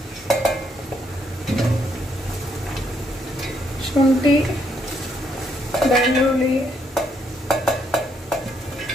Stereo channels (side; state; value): both; normal; correlation 0.73